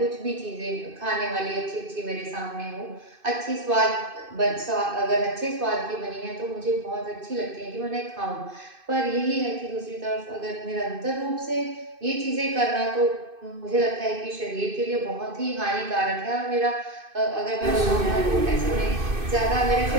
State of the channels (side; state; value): left; late; 2.5 ms